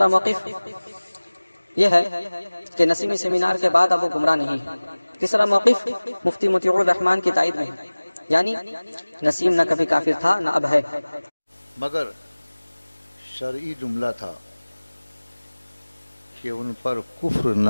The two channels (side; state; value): both; inverted; correlation -1.00